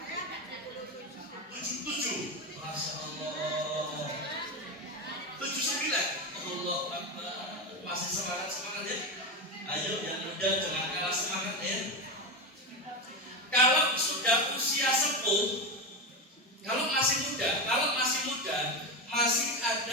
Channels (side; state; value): both; normal; correlation 0.16